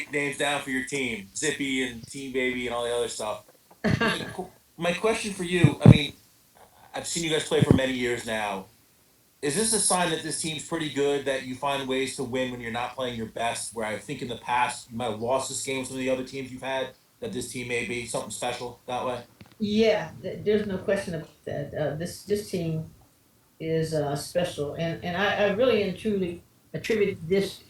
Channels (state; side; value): identical; both; correlation 1.00